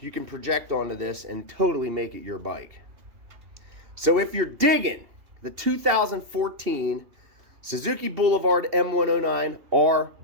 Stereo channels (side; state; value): left; late; 2.8 ms